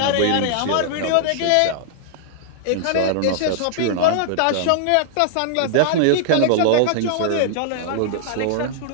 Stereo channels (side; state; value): both; different; correlation -0.01